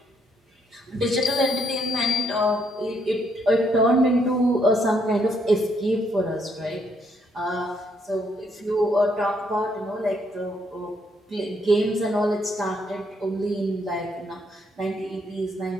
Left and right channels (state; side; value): normal; both; correlation 0.72